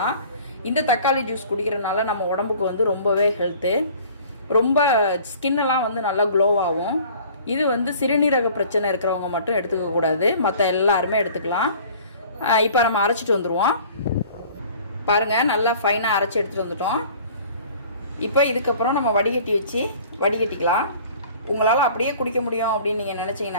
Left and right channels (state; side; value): inverted; both; correlation -0.49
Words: இந்த தக்காளி ஜூஸ் குடிக்கிறதுனால நம்ம உடம்புக்கு வந்து ரொம்பவே ஹெல்த்து. ரொம்ப ஸ்கின்னெல்லாம் வந்து நல்லா க்ளோவாகும். இது வந்து சிறுநீரக பிரச்சனை இருக்கிறவங்க மட்டும் எடுத்துக்கக்கூடாது, மற்ற எல்லாருமே எடுத்துக்கலாம். இப்போ நம்ம அரைச்சிட்டு வந்துடுவோம். பாருங்கள், நல்லா ஃபைனாக அரைச்சி எடுத்துகிட்டு வந்துட்டோம். இப்போ இதுக்கப்புறம் நம்ம வடிகட்டி வச்சு வடிகட்டிக்கலாம். உங்களால் அப்படியே குடிக்க முடியும் அப்படின்னு நீங்கள்